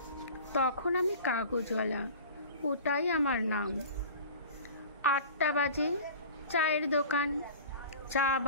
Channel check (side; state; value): both; inverted; correlation -0.40